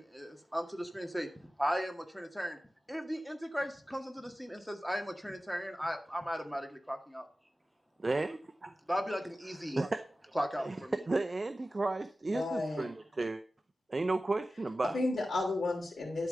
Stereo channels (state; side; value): normal; both; correlation 0.95